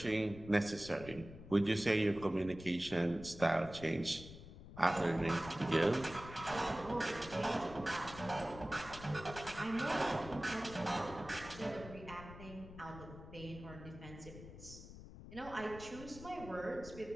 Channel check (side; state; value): left; noise; rumble, 14 dB below the sound